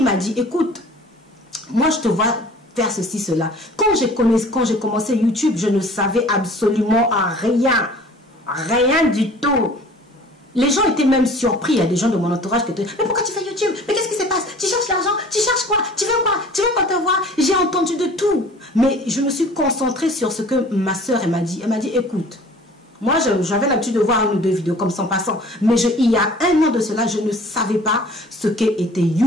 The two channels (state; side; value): normal; both; correlation 0.48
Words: m'a dit, écoute, moi je te vois faire ceci, cela. Quand j'ai commencé YouTube, je ne savais absolument rien. Rien du tout. Les gens étaient même surpris. Il y a des gens de mon entourage qui étaient, mais pourquoi tu fais YouTube? Mais qu'est-ce qui se passe? Tu cherches l'argent? Tu cherches quoi? Tu veux quoi? Tu veux qu'on te voit? J'ai entendu de tout. Mais je me suis concentrée sur ce que ma soeur m'a dit. Elle m'a dit, écoute, moi, j'avais l'habitude de voir une ou deux vidéos comme ça en passant. Mais il y a un an de cela, je ne savais pas ce qu'était